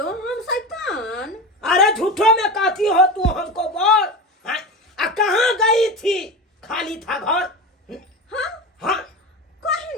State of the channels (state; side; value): normal; both; correlation 0.25